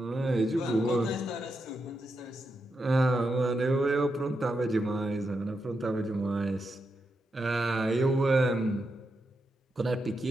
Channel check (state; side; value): normal; both; correlation 0.85